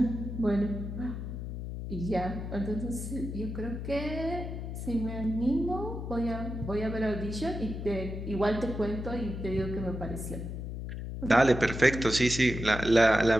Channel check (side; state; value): left; noise; hum, 6 dB below the sound